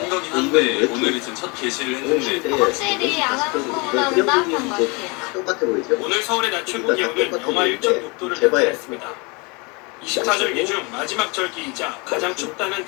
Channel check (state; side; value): quieter; right; 29.0 dB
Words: 거긴 한데 오늘이 지금 첫 게시를 했는데 확실히 안 하는 거보다는 따뜻한 것 같아요. 똑같아 보이죠? 오늘 서울의 낮 최고 기온은 영하 1.6도를 나타냈습니다. 24절기 중 마지막 절기이자 가장 춥다는